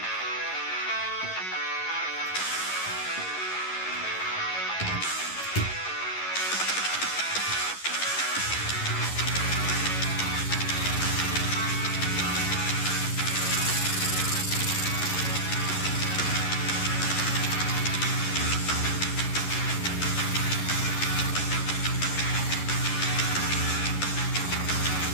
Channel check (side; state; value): right; late; 11 ms